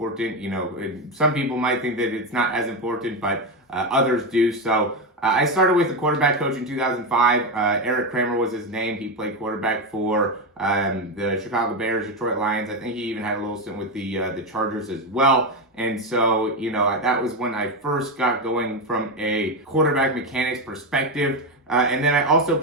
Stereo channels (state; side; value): normal; both; correlation 0.12